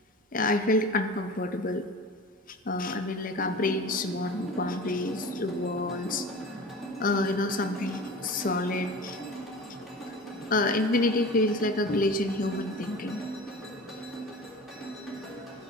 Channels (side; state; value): both; normal; correlation 0.36